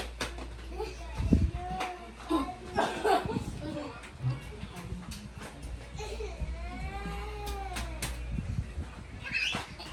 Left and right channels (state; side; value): identical; both; correlation 1.00